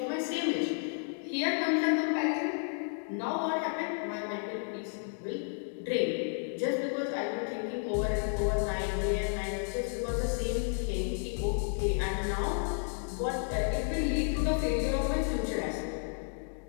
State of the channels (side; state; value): right; silent; 56 dB below the other